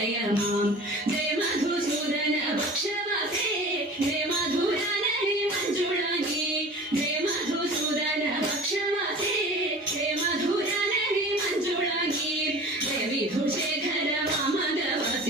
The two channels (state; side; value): normal; both; correlation 0.40